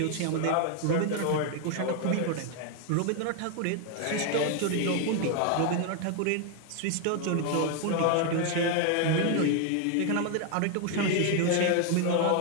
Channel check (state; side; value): different; both; correlation 0.01